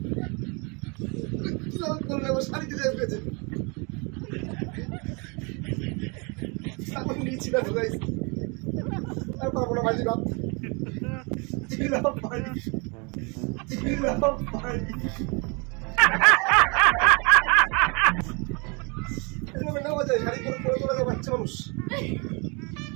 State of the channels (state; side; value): quieter; left; 31.5 dB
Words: শাড়িতে যাই পেয়েছে নিয়েছিল আর পারবো না বাজি বাপ নেওয়া যায়। শাড়ি করে করে করে বাচ্চা মানুষ